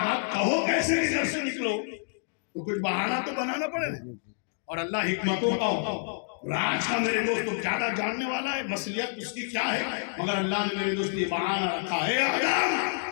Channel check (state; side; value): silent; right; digital silence